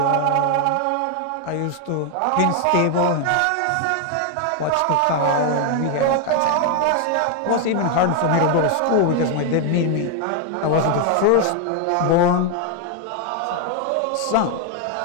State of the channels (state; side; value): different; both; correlation 0.00